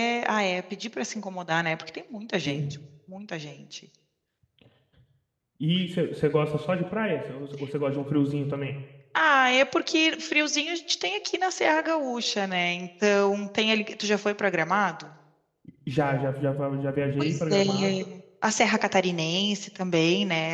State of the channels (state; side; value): identical; both; correlation 1.00